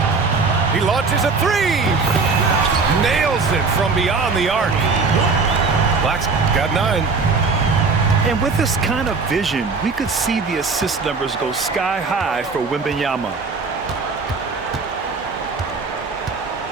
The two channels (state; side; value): quieter; left; 4.5 dB